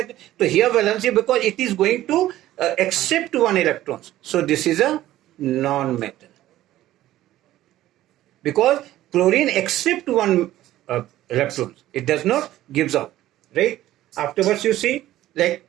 So here valency, because it is going to accept 1 electrons. So this is a non-metal. Because chlorine accepts 1 electrons. It does not gives out. Right? Afterwards you see, like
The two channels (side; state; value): left; quieter; 14.5 dB